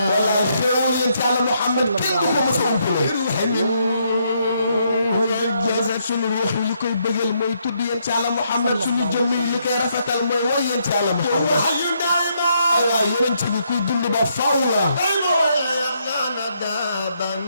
wala xéewal yéen ci yàlla Muhammad kenn du ko mos a umpale suñu ruux li koy bëggal mooy tudd yéen ci yàlla Muhammad suñu jëmm yi li koy rafetal mooy woy yéen ci yàlla Muhammad ay waay yonent bi kuy dund ba faw la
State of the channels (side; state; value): both; inverted; correlation -0.74